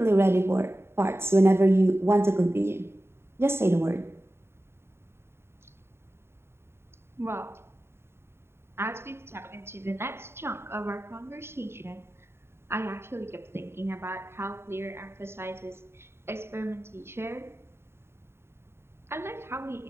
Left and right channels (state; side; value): late; left; 0.12 ms